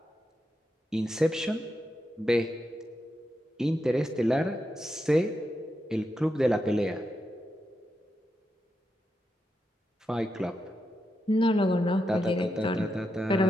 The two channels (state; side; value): normal; both; correlation 0.86